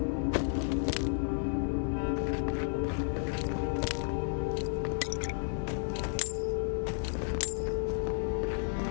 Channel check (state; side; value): silent; right; 56 dB below the other